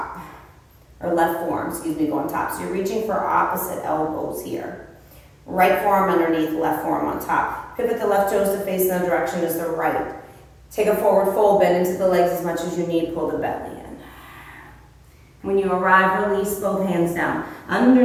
Or left forearm, excuse me, go on top. So you're reaching for opposite elbows here. Right forearm underneath, left forearm on top. Pivot the left toes to face in the direction as the right. Take a forward fold, bend into the legs as much as you need, pull the belly in. When you arrive, release both hands down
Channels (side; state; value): both; identical; correlation 1.00